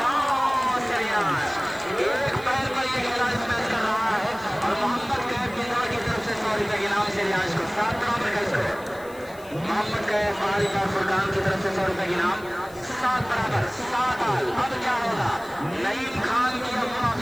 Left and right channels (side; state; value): left; noise; hiss, 22 dB below the sound